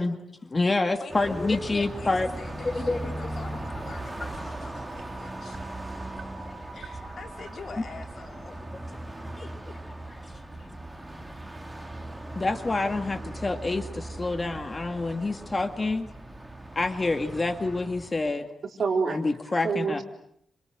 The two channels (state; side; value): normal; both; correlation 0.93